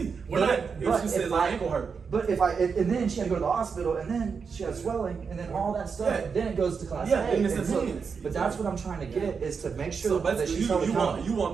We're not. If she says my ankle hurt. But if and then she had to go to the hospital, and then she had swelling, and then all that stuff, Yeah. then it goes to Class Yeah, A. and it's and so- intense. But that's what I'm trying to get is to make sure So that basically, she's held you accountable. want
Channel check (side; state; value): left; quieter; 5.7 dB